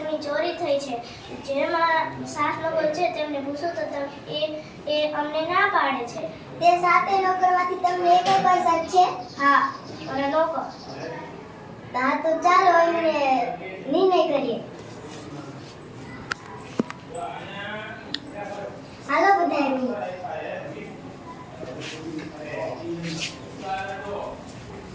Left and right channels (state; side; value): identical; both; correlation 1.00